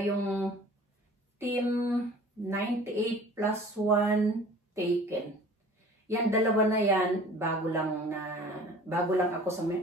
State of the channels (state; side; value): normal; both; correlation 0.46